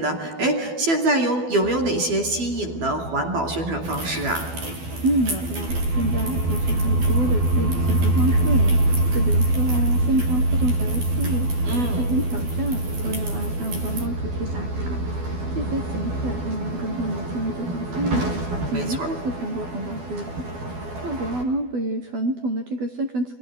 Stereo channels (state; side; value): late; left; 12 ms